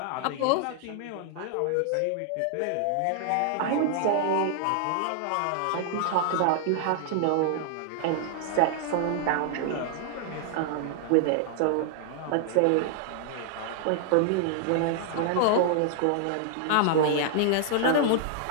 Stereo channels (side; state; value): both; different; correlation -0.01